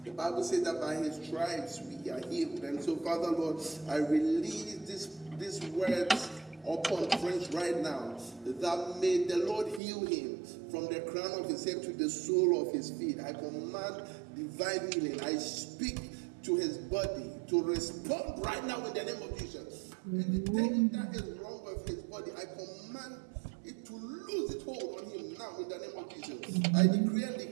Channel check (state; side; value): drops out; left; at 9.8 s